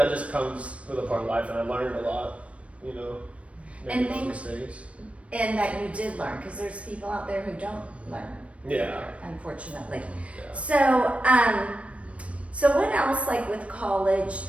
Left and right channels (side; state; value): left; late; 0.063 ms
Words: just comes with a part of life, and I learned a lot, making those mistakes. And that you did learn, because there's people out there who don't learn. Yeah. Unfortunately. Yeah. So what else, like with college,